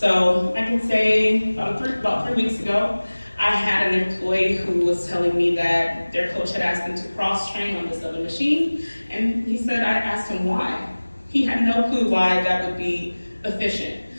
I can say about 3 weeks ago, I had an employee who was telling me that their coach had asked them to cross-train on this other machine, and he said I asked him why. He had no clue why that would be efficient.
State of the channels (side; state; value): both; inverted; correlation -1.00